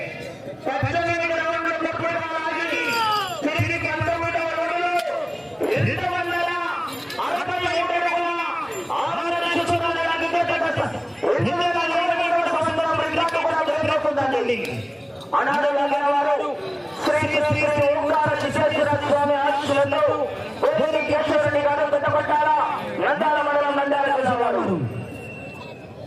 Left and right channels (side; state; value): both; identical; correlation 1.00